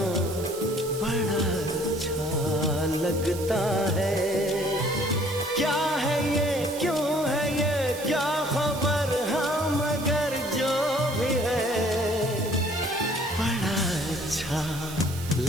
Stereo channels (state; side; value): noise; right; hiss, 13 dB below the sound